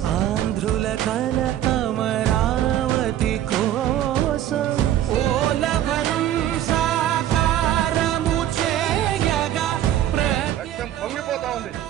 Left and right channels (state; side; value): quieter; left; 12.0 dB